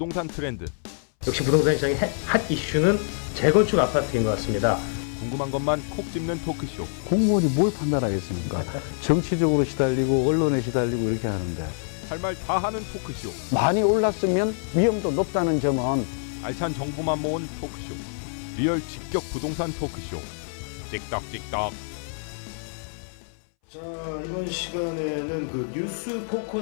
트렌드. 역시 부동산 시장의 핫 이슈는 재건축 아파트인 것 같습니다. 궁금한 것만 콕 집는 토크쇼. 공무원이 뭘 판단하겠습니까? 정치적으로 시달리고 언론에 시달리고 이렇게 하는데 할 말 다 하는 토크쇼. 많이 올랐으면 위험도 높다는 점은 알찬 정보만 모은 토크쇼. 리얼 직격 부동산 토크쇼. 찍덕찍덕. 자, 이번 시간에는 그 뉴스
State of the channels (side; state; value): right; silent; 61 dB below the other